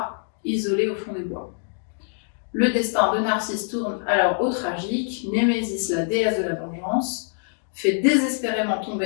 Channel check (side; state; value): right; silent; 62 dB below the other